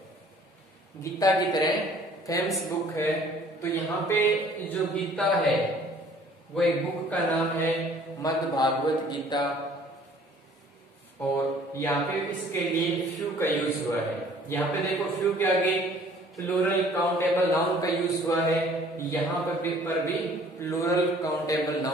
गीता की तरह फेमस बुक है। तो यहाँ पे जो गीता है वो एक बुक का नाम है मद् भागवत गीता, और यहाँ पे इसके लिए फ्यू का यूज हुआ है। यहाँ पे देखो फ्यू के आगे प्लूरल काउंटेबल नाउन का यूज हुआ है, यहाँ पर भी प्लूरल काउंटेबल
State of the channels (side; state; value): both; normal; correlation 0.55